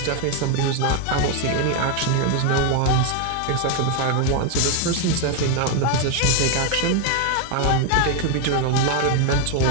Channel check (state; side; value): different; both; correlation 0.01